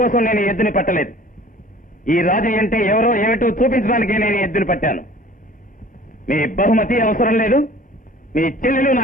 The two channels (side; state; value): both; normal; correlation 0.48